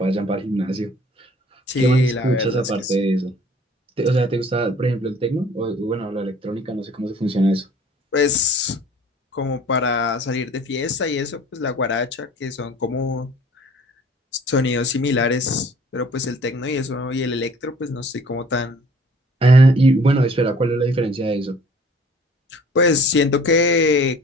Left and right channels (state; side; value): normal; both; correlation 0.52